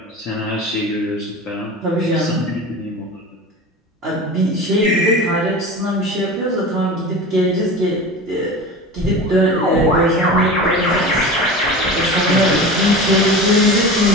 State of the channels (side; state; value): both; normal; correlation 0.32